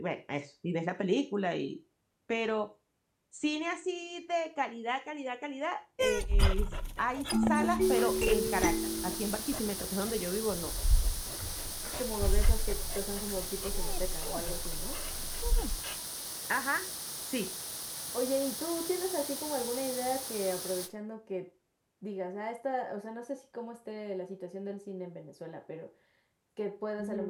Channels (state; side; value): identical; both; correlation 1.00